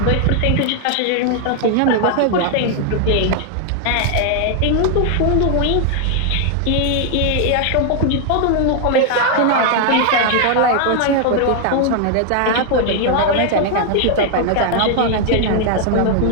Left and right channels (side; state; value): both; different; correlation 0.00